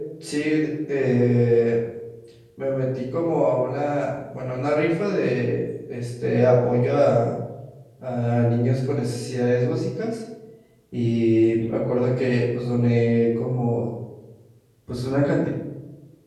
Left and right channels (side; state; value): both; identical; correlation 1.00